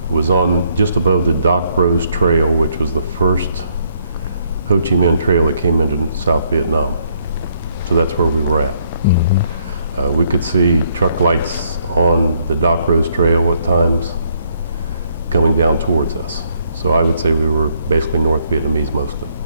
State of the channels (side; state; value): both; inverted; correlation -0.70